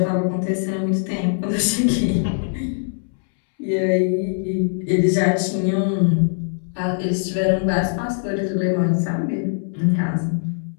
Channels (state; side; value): silent; right; 65 dB below the other